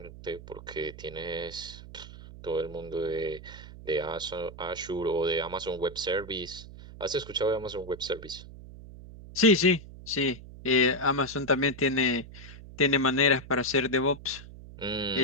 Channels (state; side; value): noise; right; hum, 15 dB below the sound